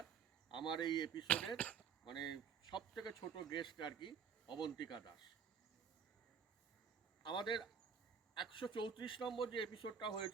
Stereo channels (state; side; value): quieter; left; 6.8 dB